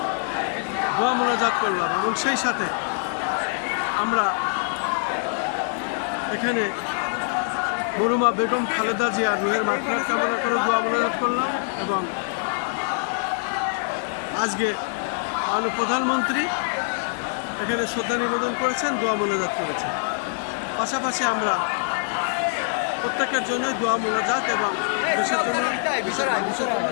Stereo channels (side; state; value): right; silent; digital silence